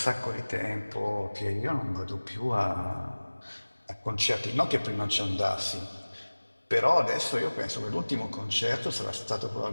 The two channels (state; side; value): inverted; both; correlation -1.00